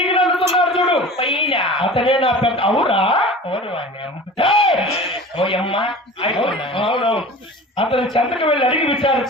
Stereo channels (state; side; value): normal; both; correlation 0.38